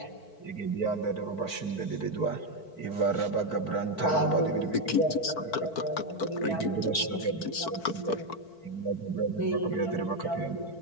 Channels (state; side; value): late; right; 4.5 ms